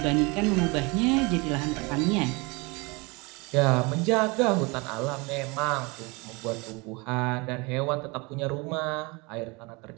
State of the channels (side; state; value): left; quieter; 27.1 dB